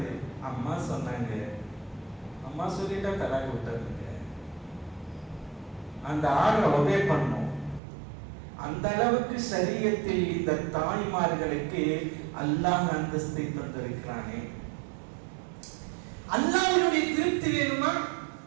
அம்மா சொன்னாங்க, அம்மா சொல்லிட்டா தலாக்கு விட்டுறதுங்க. அந்த ஆர்டரை ஒபே பண்ணும். அந்த அளவுக்கு சரியத்தில் இந்த தாய்மார்களுக்கு அல்லாஹ் அந்தஸ்தை தந்திருக்கிறானே. அல்லாஹ்வுடைய திருப்தி வேணுமா?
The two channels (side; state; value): left; drops out; at 7.8 s